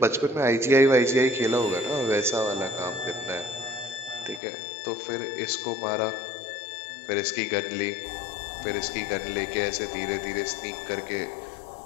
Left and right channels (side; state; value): right; drops out; at 4.4 s